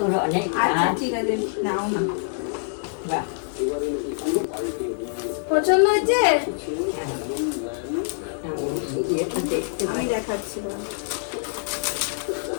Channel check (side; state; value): right; silent; digital silence